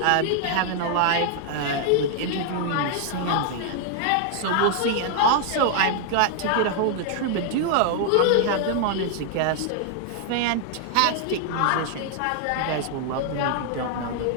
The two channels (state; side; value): different; both; correlation -0.01